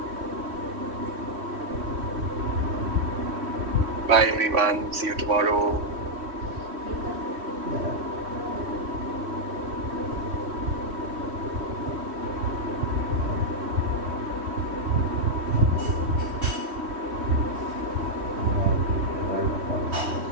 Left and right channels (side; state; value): left; late; 3.1 ms